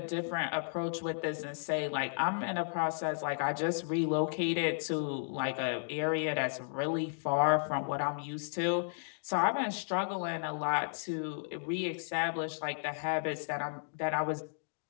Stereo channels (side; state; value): right; silent; digital silence